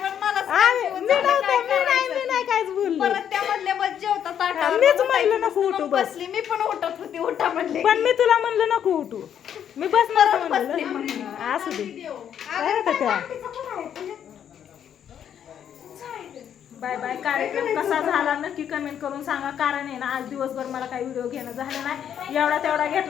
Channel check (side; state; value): right; quieter; 9.2 dB